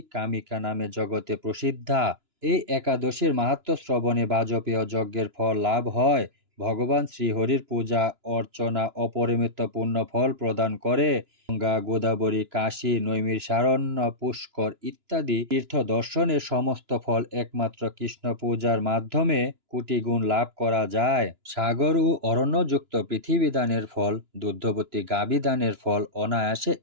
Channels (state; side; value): late; left; 2.9 ms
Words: কামিকা নামে জগতে প্রসিদ্ধা। এই একাদশীর মাহাত্ম্য শ্রবণে বাজপেয় যজ্ঞের ফল লাভ হয়। ভগবান শ্রীহরির পূজা অর্চনা অপরিমিত পুণ্য ফল প্রদান করে। গঙ্গা, গোদাবরী, কাশী, নৈমিষারণ্য, পুষ্কর ইত্যাদি তীর্থ দর্শনের সমস্ত ফল একমাত্র কৃষ্ণ পূজার মাধ্যমে কোটি গুণ লাভ করা যায়। সাগর ও অরণ্যযুক্ত পৃথিবী দানের ফল, দুগ্ধবতী গাভী দানের ফল অনায়াসে